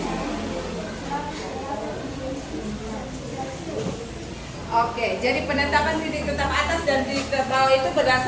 Oke, jadi penetapan titik tetap atas dan titik tetap bawah itu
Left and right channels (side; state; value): both; identical; correlation 1.00